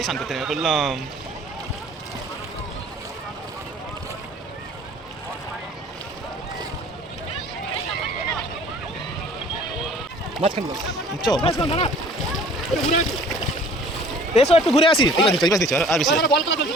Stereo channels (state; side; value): normal; both; correlation 0.50